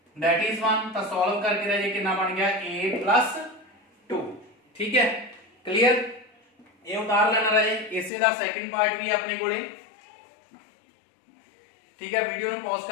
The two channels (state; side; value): drops out; right; at 8.1 s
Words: दैट इज 1। तो सॉल्व करके राजे कितना बन गया a plus 2, ठीक है, क्लियर। ये उतार लेना रहे, इसे दा सेकंड पार्ट भी अपने कोले, ठीक है। वीडियो नु पॉज